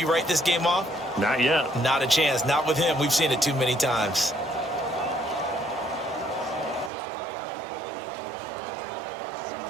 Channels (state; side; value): drops out; left; at 6.9 s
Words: write this game off? Not yet. Not a chance. Not with him. We've seen it too many times.